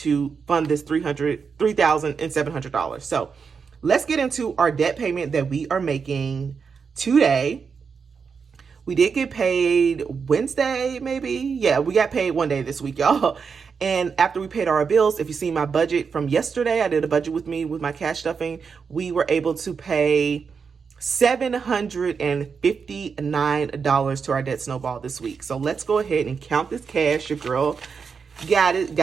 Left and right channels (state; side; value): quieter; left; 5.8 dB